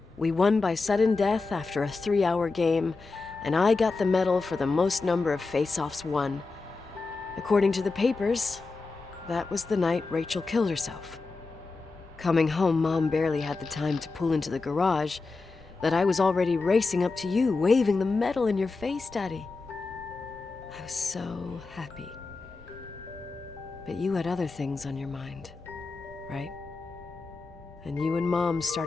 We won by sudden death after a 3-hour game, and I got the medal for the most number of face-offs won. According to the papers, that was the night Rachel killed herself. Coming home, Mom barely had the time to pull into the garage that I was already racing up to you, waving the medal in your face, Daddy. I was so happy. But you had other things on your mind, right? And you and Mom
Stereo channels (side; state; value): right; quieter; 3.9 dB